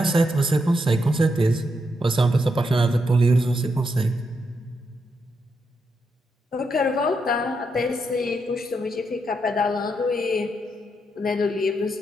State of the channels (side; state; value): both; normal; correlation 0.81